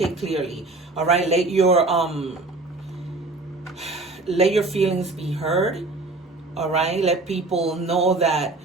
clearly. All right, let your feelings be heard. All right, let people know that,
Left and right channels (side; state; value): left; quieter; 3.3 dB